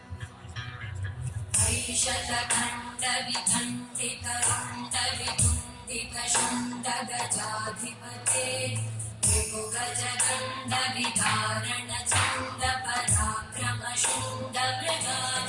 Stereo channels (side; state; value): both; identical; correlation 1.00